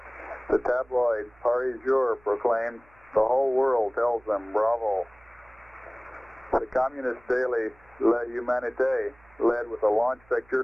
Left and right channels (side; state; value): right; noise; hum, 30 dB below the sound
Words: The tabloid Paris Jour proclaimed, "The whole world tells them bravo." The communist daily La Humanité led with a launch